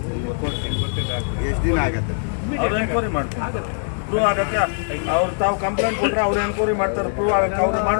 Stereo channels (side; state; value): right; silent; 65 dB below the other